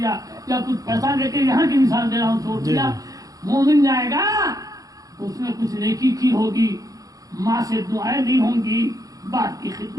یا کچھ پیسہ لے کے, یہاں کی مثال دے رہا ہوں, چھوڑ دیا. مومن جائے گا تو اس نے کچھ نیکی کی ہوگی, ماں سے دعائیں دی ہوں گی, بات کی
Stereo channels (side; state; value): left; late; 0.17 ms